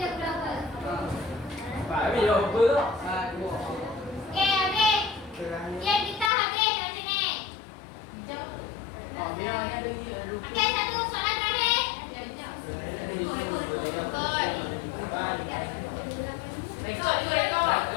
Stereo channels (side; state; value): right; drops out; at 6.3 s